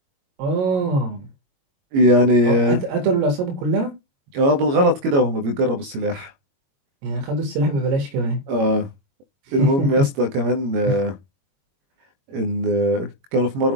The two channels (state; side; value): late; left; 22 ms